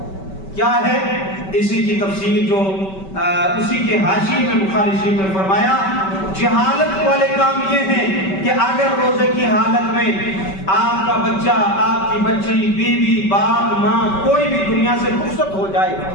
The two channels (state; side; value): late; right; 5.2 ms